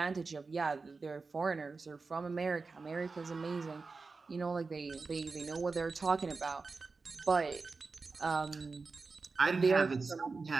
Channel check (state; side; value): quieter; left; 4.2 dB